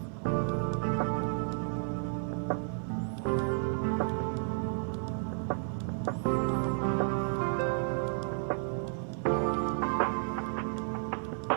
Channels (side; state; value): left; silent; 56 dB below the other